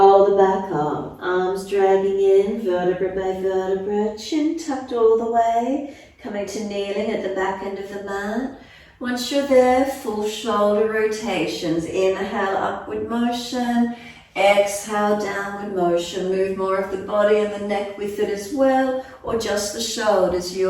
the back up, arms dragging in, vertebra by vertebra, chin tucked all the way, coming to kneeling at the back end of the mat. Once you're there, full shoulder rotations. Inhale, upward motion. Exhale, downward motion. Move more of the body and the neck with it as well, or just the shoulders,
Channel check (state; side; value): identical; both; correlation 1.00